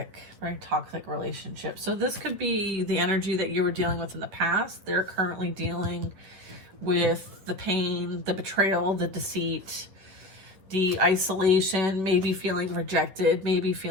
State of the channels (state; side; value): late; left; 10 ms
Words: relationship. So this could be the energy that you were dealing with in the past. They're currently dealing with the pain, the betrayal, the deceit, the isolation, maybe feeling rejected, maybe